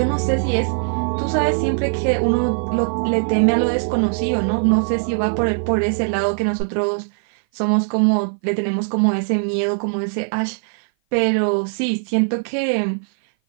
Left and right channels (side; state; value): left; silent; 58 dB below the other